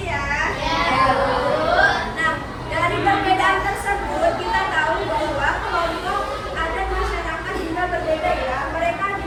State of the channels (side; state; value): both; identical; correlation 1.00